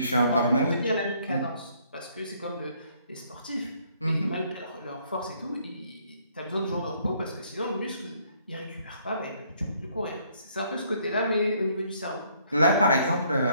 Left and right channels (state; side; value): inverted; both; correlation -0.66